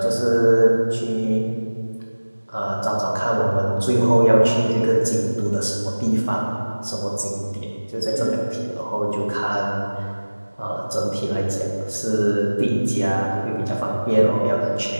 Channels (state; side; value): inverted; both; correlation -1.00